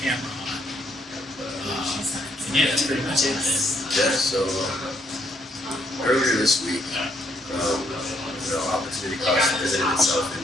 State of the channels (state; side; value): normal; both; correlation 0.71